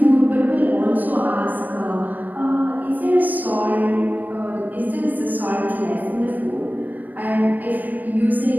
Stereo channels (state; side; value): late; left; 0.085 ms